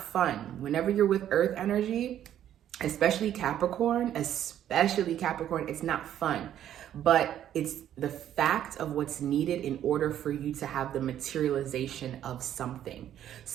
fun. Whenever you're with Earth energy, especially Capricorn, it's not fun. But it's the fact of what's needed in order for you to have the materialization of something.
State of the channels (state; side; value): quieter; left; 11.0 dB